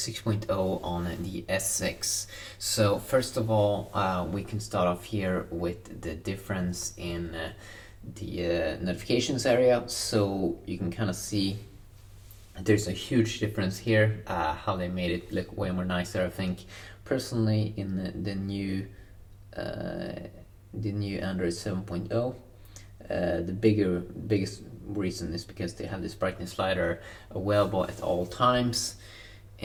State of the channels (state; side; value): identical; both; correlation 1.00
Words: on the S6. So first of all, we can start off here with the difference in the notifications area. So you can kind of see there's a huge difference here, how they made it look way more nicer, I think. Personally, in the new Android 7.0. The biggest reason is because they have this brightness slider available at all times,